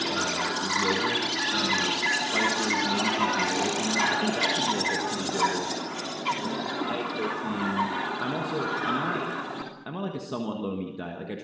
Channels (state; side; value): identical; both; correlation 1.00